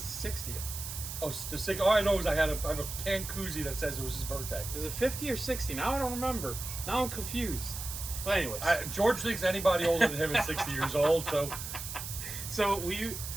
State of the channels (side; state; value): right; noise; hiss, 7 dB below the sound